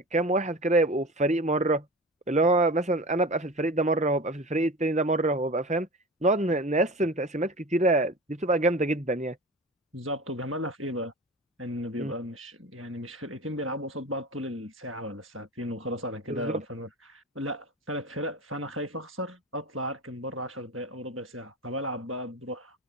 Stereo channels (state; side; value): normal; both; correlation 0.33